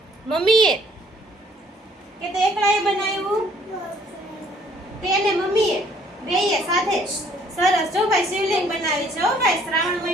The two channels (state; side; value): normal; both; correlation 0.61